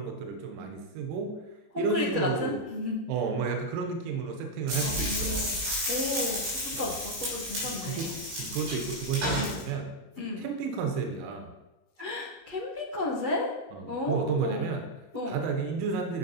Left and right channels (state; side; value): late; left; 19 ms